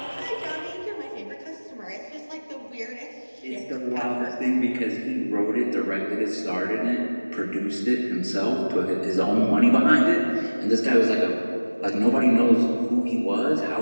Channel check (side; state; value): both; inverted; correlation -1.00